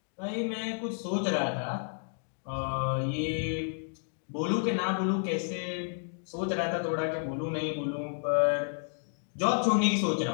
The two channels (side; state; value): right; silent; digital silence